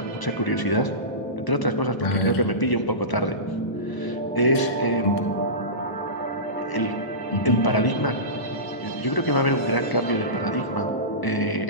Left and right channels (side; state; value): right; late; 1.0 ms